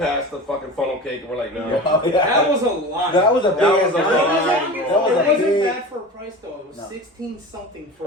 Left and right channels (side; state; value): both; normal; correlation 0.33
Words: the fucking funnel cake, and we're like, no. That was a lot. That was a big. That was a ass lot. line, It bro. wasn't big- bad for a price though. It was No. 16 something for.